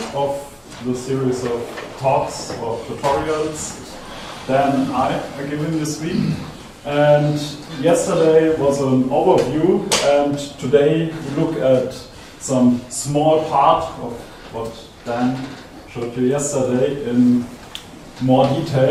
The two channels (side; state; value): both; identical; correlation 1.00